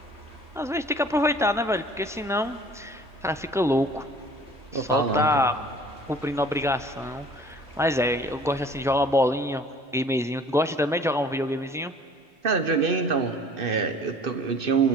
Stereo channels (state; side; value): normal; both; correlation 0.50